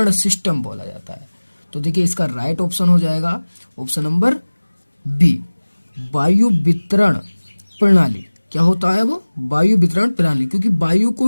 सिस्टम बोला जाता है। तो देखिए, इसका राइट ऑप्शन हो जाएगा ऑप्शन नंबर बी, वायु वितरण प्रणाली, क्या होता है वो वायु वितरण प्रणाली, क्योंकि वायु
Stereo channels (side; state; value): both; inverted; correlation -1.00